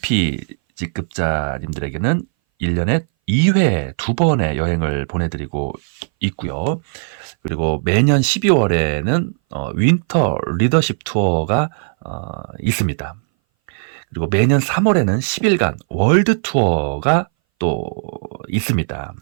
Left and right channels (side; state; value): left; silent; 61 dB below the other